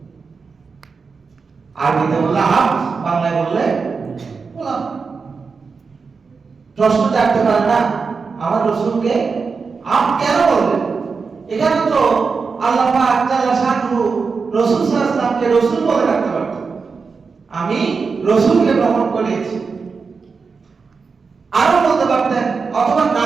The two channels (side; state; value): left; quieter; 5.0 dB